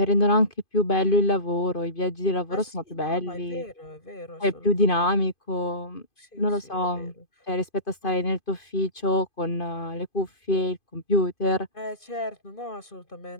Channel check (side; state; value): right; late; 2.5 ms